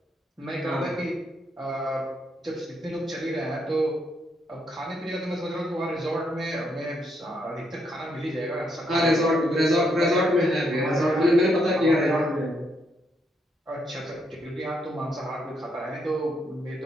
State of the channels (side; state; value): both; normal; correlation 0.76